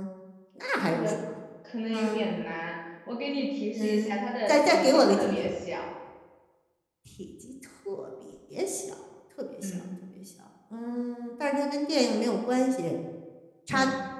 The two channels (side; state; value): both; identical; correlation 1.00